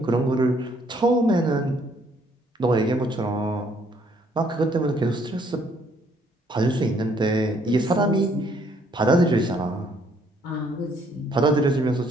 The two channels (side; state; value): both; normal; correlation 0.65